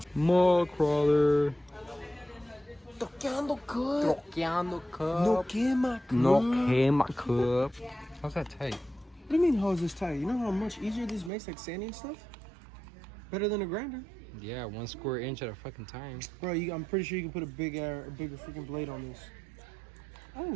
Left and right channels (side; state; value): left; drops out; at 11.3 s